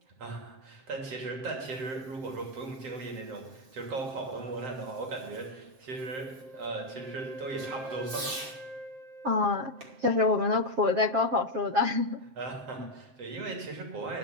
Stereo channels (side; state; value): left; late; 7.6 ms